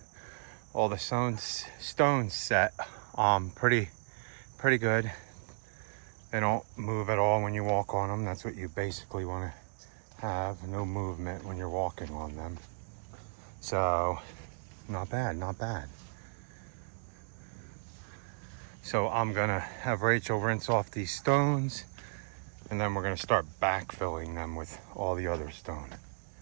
All the stones set. Pretty good. They don't move at all when you walk on them. That's what you basically want to have. No movement when you're walking on them. So, not bad, not bad. So I'm gonna have Rachel rinse off these stones, and then we're gonna start backfilling them with all the other stone.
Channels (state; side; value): silent; left; digital silence